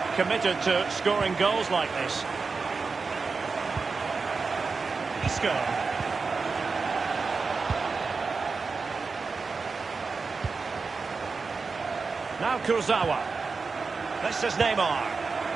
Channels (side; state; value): left; quieter; 4.5 dB